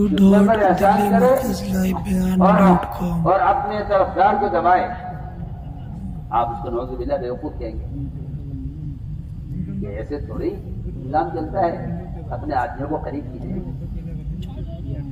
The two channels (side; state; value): both; identical; correlation 1.00